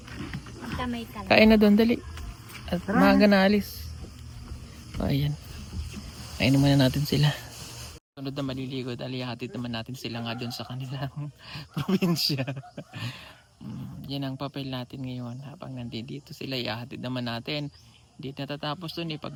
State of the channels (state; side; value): identical; both; correlation 1.00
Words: Magkamay ka lang. Kain na doon, dali. At maaga na alis. Ayan. Kainin muna natin sila. Sunod na maliligo dahil ihatid naman natin sila nga doon sa kanilang probinsya. Yan ang papel natin ngayon. Habang nandito sila, ihatid naman natin. Hindi natatapos doon